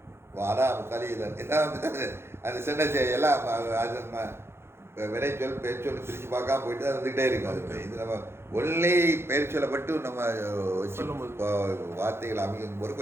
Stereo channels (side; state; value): left; late; 0.12 ms